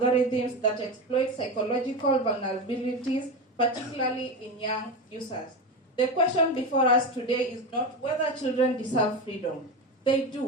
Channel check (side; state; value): both; normal; correlation 0.20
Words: that exploit psychological vulnerabilities, particularly in young users. The question before us today is not whether children deserve freedom. They